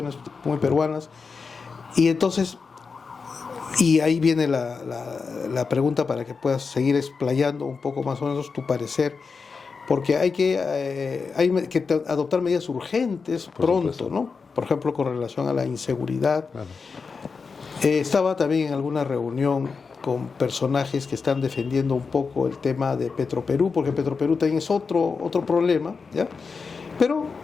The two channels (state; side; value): quieter; right; 5.0 dB